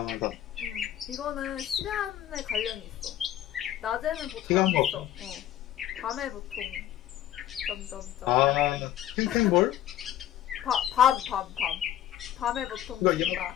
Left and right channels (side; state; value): right; quieter; 12.0 dB